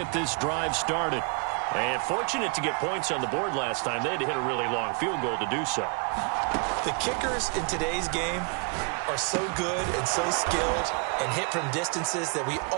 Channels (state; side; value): quieter; left; 34.2 dB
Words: this drive started. And fortunate to get points on the board last time. They had to hit a really long field goal to do so. The kickers in today's game are so good and so skilled and hit from distances that we